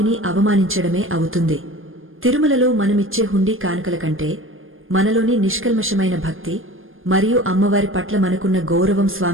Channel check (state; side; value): late; left; 0.59 ms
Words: అవమానించడమే అవుతుంది. తిరుమలలో మనమిచ్చే హుండీ కానుకల కంటే మనలోని నిష్కల్మషమైన భక్తి మరియు అమ్మవారి పట్ల మనకున్న గౌరవం